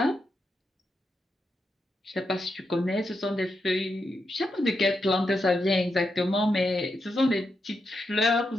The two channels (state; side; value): normal; both; correlation 0.85